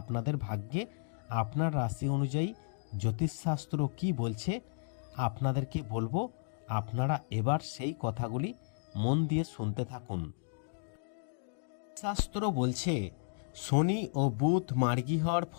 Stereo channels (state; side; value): silent; right; digital silence